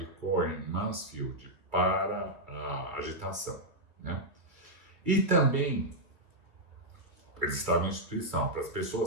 Cohen-Mansfield para a agitação, né? E também, eles estavam em instituição, para as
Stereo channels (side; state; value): left; late; 2.4 ms